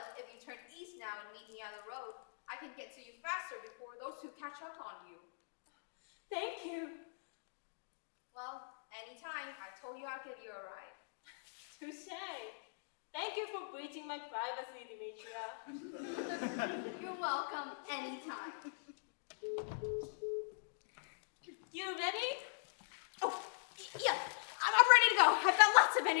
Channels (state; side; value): silent; right; digital silence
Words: if you turn east now and meet me at the road, I can get to you faster before those two catch up on you. Thank you. Well, anytime. I told you I'll give you a ride. Touche. Thank you for breaching my privacy, Demetria. You're welcome anytime. You ready? Oh, yeah, I'm ready to go. I've got lots of